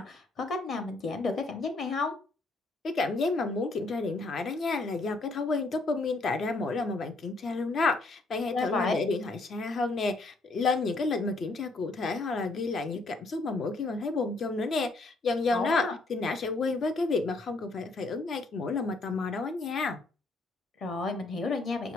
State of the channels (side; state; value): right; quieter; 3.3 dB